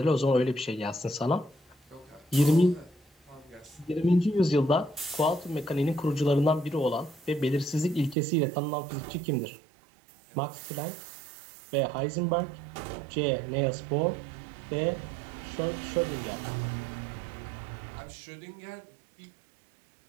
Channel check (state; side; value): drops out; left; at 8.2 s